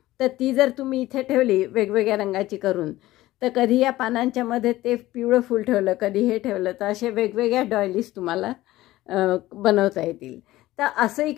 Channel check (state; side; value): quieter; right; 16.6 dB